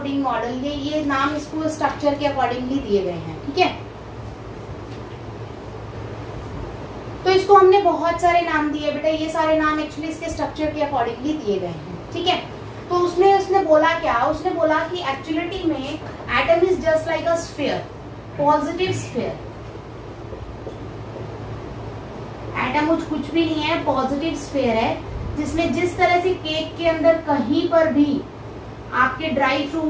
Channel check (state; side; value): identical; both; correlation 1.00